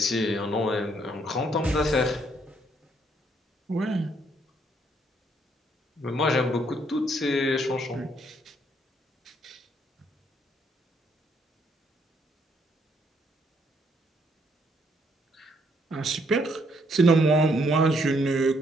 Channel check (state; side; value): normal; both; correlation 0.70